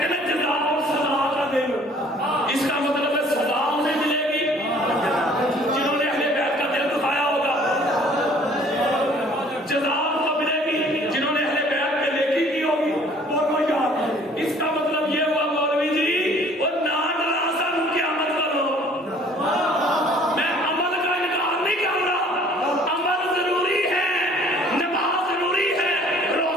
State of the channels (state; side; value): normal; both; correlation 0.55